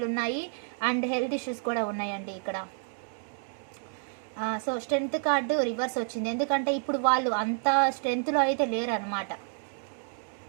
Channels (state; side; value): silent; left; 56 dB below the other